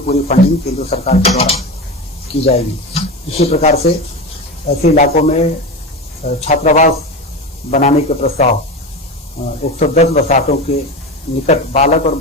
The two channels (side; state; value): both; normal; correlation 0.24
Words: फंडिंग केंद्र सरकार के द्वारा की जाएगी। इसी प्रकार से ऐसे इलाकों में छात्रावास बनाने के प्रस्ताव 110 बसातों के निकट बालक और